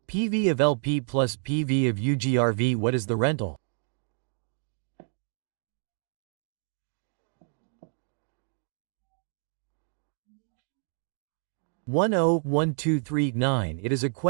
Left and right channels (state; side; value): silent; left; digital silence